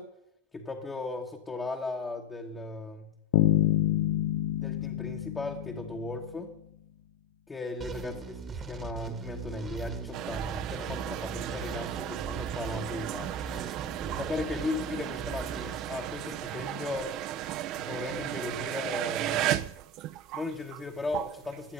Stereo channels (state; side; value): normal; both; correlation 0.21